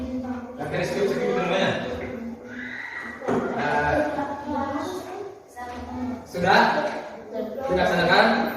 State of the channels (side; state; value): both; identical; correlation 1.00